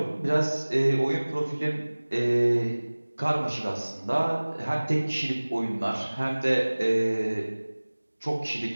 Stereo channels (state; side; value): inverted; both; correlation -1.00